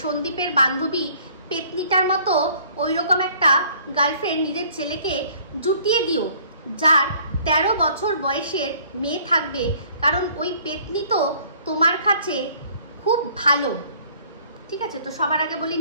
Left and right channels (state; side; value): inverted; both; correlation -0.56